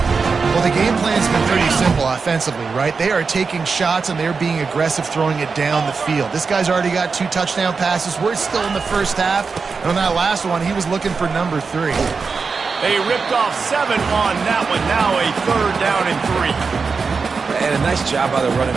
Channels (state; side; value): quieter; left; 4.9 dB